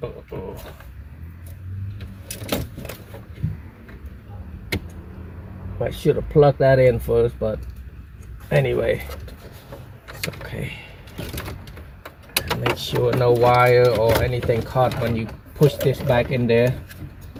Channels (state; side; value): identical; both; correlation 1.00